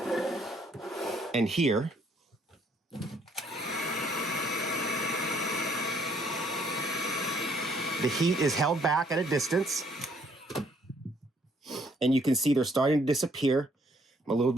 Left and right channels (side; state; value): both; normal; correlation 0.66